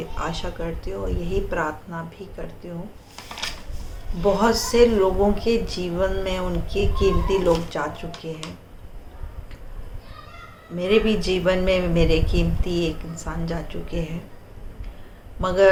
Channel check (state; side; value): identical; both; correlation 1.00